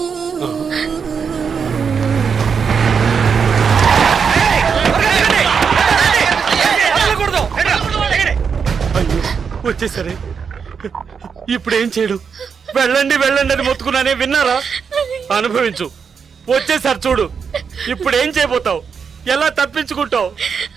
వచ్చేసరే, ఇప్పుడు ఏం చేయడం? వెళ్ళండి వెళ్ళండి అని మొత్తుకున్నానే, విన్నారా? అనుభవించు. వచ్చేసారి చూడు, ఇప్పుడు ఏం చేయబోతావు? ఎలా తప్పించుకుంటావు?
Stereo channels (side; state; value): left; quieter; 6.3 dB